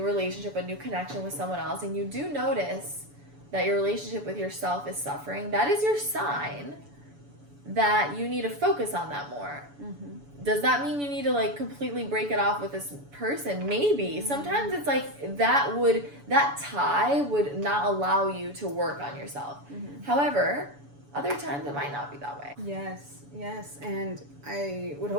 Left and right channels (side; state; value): left; late; 7.0 ms